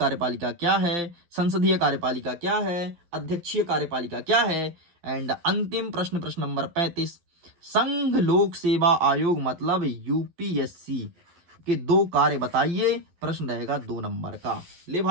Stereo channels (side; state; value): left; late; 12 ms